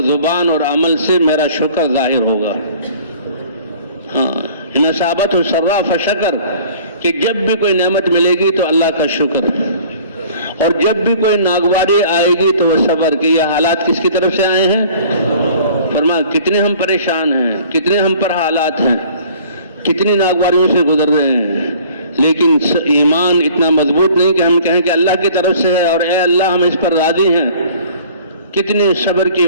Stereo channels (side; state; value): both; inverted; correlation -0.51